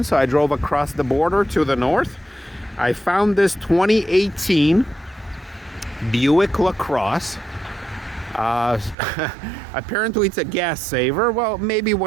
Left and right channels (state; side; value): drops out; left; at 9.0 s